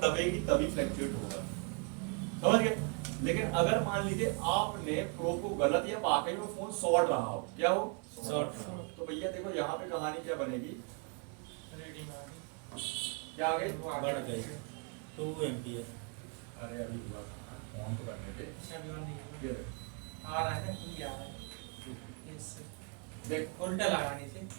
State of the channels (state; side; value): quieter; left; 36.9 dB